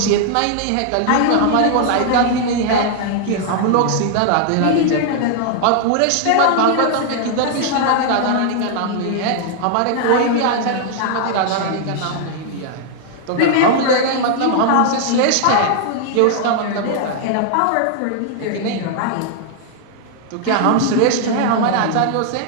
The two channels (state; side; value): different; both; correlation 0.00